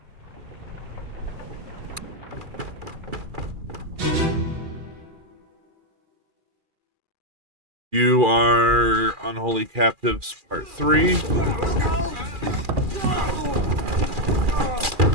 You are Unholy Captives Part 3.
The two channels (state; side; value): late; left; 2.4 ms